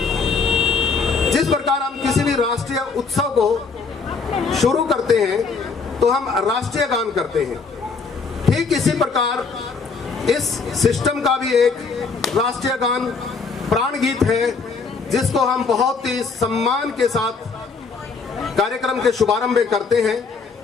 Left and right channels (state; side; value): quieter; right; 4.8 dB